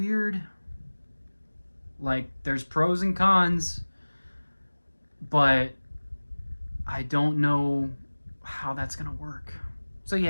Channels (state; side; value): inverted; both; correlation -1.00